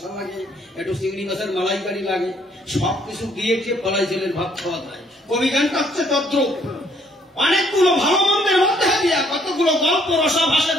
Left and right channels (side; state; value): both; normal; correlation 0.65